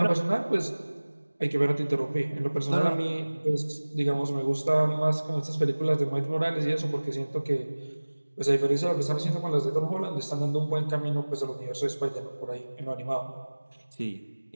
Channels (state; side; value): inverted; both; correlation -1.00